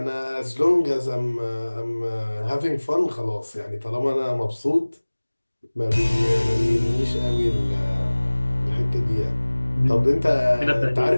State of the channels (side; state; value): both; inverted; correlation -1.00